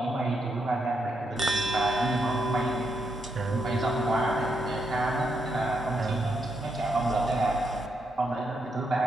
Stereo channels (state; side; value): normal; both; correlation 0.80